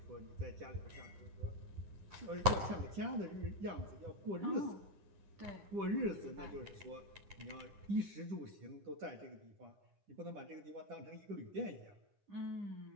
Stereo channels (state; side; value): late; left; 9.7 ms